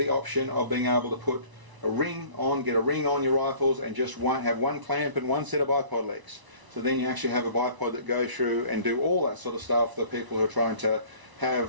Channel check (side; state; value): left; late; 1.0 ms